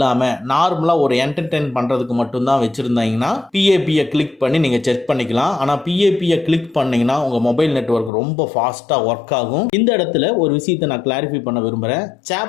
நார்மலா ஒரு என்டர்டெயின் பண்றதுக்கு மட்டும் தான் வச்சிருந்தீங்கன்னா PAP-ய கிளிக் பண்ணி நீங்க செக் பண்ணிக்கலாம். ஆனா PAP-ய கிளிக் பண்ணீங்கன்னா உங்க மொபைல் நெட்வொர்க் ரொம்ப ஃபாஸ்டா ஒர்க் ஆகும். இந்த இடத்துல ஒரு விஷயத்தை நான் கிளாரிஃபை பண்ண விரும்புறேன்.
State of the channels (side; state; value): right; drops out; at 8.1 s